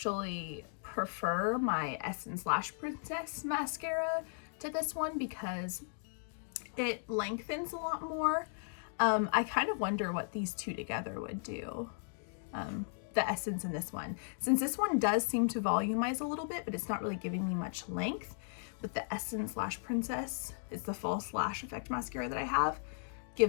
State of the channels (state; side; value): silent; right; digital silence